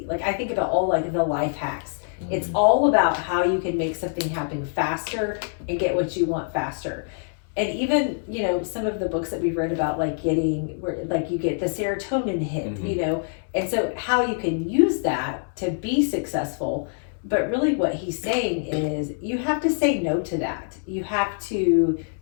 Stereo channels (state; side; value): silent; right; 62 dB below the other